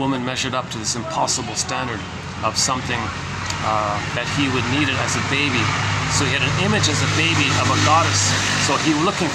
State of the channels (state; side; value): identical; both; correlation 1.00